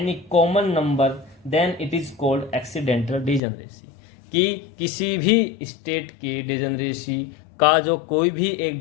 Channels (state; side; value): drops out; right; at 3.4 s